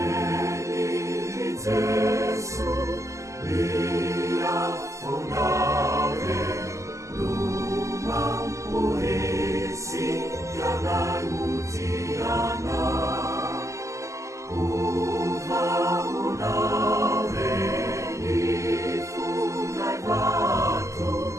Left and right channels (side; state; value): left; late; 0.15 ms